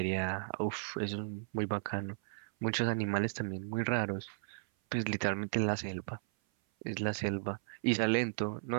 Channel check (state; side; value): silent; left; 54 dB below the other